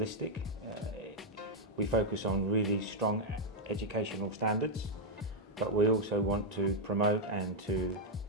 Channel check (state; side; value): normal; both; correlation -0.02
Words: We focus on really strong educational standards, but we also want to promote and to